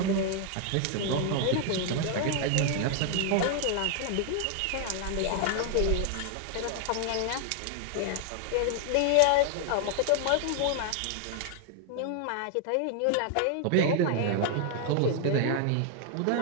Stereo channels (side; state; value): both; different; correlation 0.00